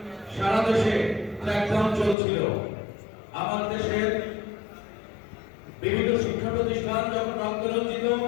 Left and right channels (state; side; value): drops out; right; at 2.1 s